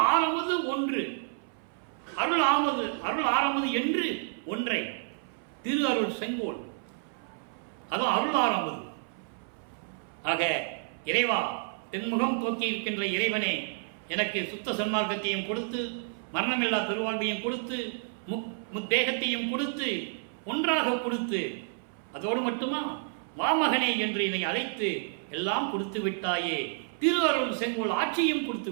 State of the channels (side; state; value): left; silent; 58 dB below the other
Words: ஆரம்பது ஒன்று, அருள் ஆரம்பது என்று ஒன்றை, திரு அருள் செங்கோல், அதுவும் அருள் ஆரம்பது. ஆக இறைவா, தென்முகம் தோக்கி இருக்கின்ற இறைவனே, எனக்கு சுத்த சன்மார்க்கத்தையும் கொடுத்து, மரணமில்லா பெருவாழ்வையும் கொடுத்து, முத்தேகத்தையும் கொடுத்து, ஒன்றாக கொடுத்து, அதோடு மட்டுமா வாமகனே என்று என்னை அழைத்து எல்லாம் கொடுத்து விட்டாயே, திரு அருள் செங்கோல் ஆட்சியும் கொடுத்து